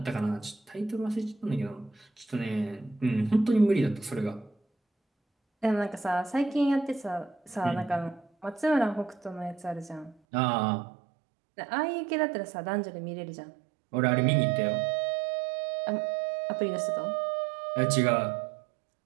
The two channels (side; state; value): left; drops out; at 10.2 s